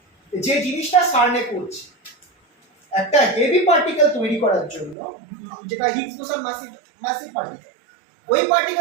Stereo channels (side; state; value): left; drops out; at 5.0 s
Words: যে জিনিসটা সার্নে করছে একটা হেভি পার্টিকেল তৈরি করার জন্য, যেটা হিগস বোসন মাসিভ পার্টিকেল, ওই